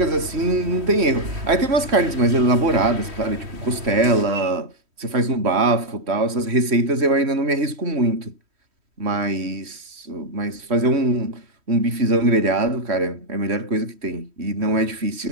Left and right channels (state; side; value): late; left; 3.1 ms